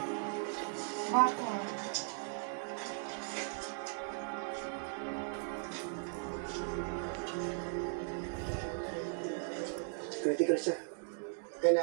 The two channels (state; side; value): silent; left; 53 dB below the other